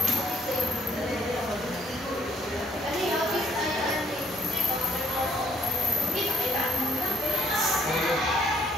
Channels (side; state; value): both; normal; correlation 0.64